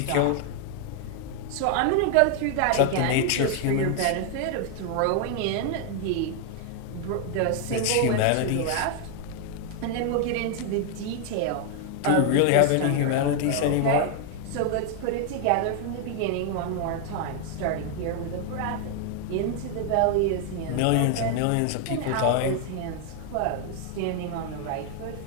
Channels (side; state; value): both; different; correlation 0.00